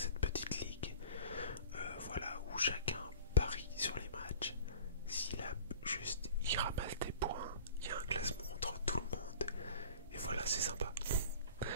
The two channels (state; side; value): inverted; both; correlation -0.43